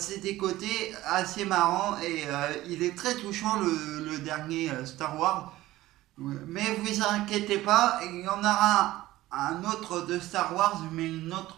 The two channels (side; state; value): left; quieter; 16.4 dB